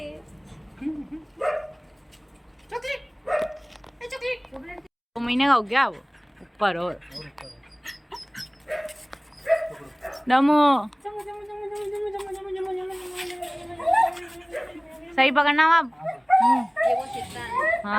चॉकलेट, 2 महीने का हो गया वो ऊपर। और दमू सही पकड़ना आप। ये वो चित्ता है।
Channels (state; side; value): identical; both; correlation 1.00